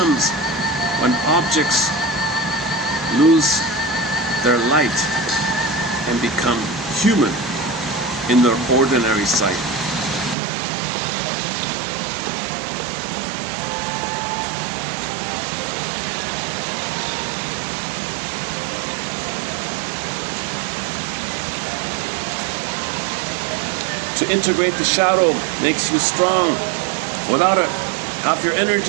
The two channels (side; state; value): left; drops out; at 10.4 s